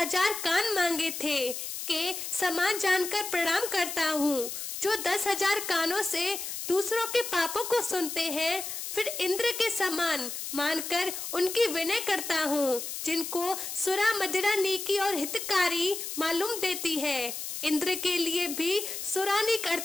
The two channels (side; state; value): left; noise; hiss, 6 dB below the sound